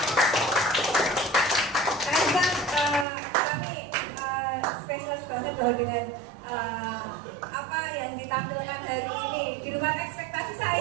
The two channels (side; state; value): left; drops out; at 3.1 s